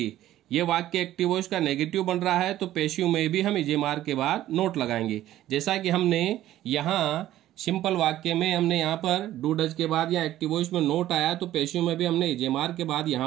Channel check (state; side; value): quieter; left; 13.7 dB